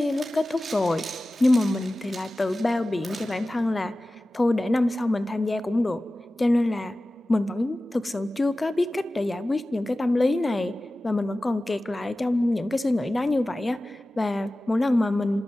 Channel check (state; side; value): normal; both; correlation 0.96